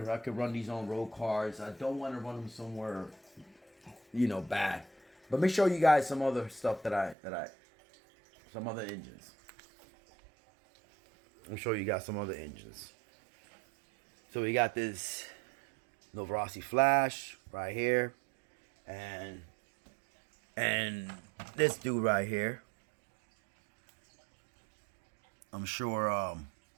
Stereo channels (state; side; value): drops out; left; at 7.2 s